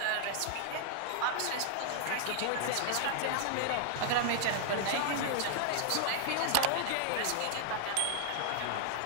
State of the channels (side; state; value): both; different; correlation 0.00